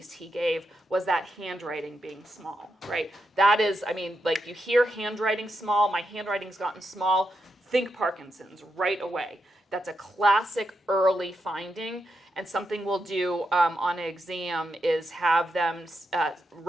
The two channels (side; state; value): both; normal; correlation 0.84